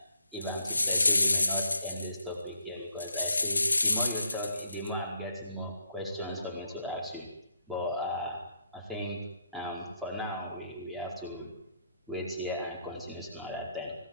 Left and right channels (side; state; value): both; inverted; correlation -0.76